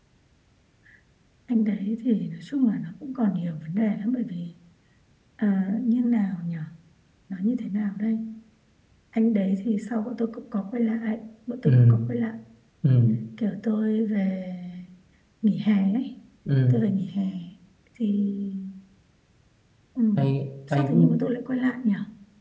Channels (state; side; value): identical; both; correlation 1.00